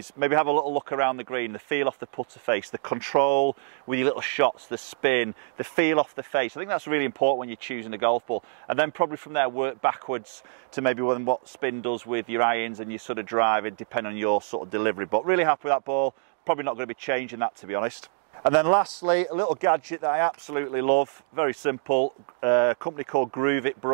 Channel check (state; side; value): silent; left; digital silence